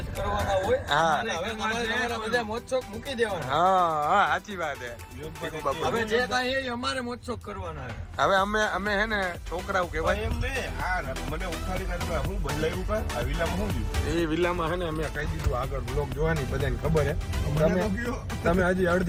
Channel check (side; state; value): both; identical; correlation 1.00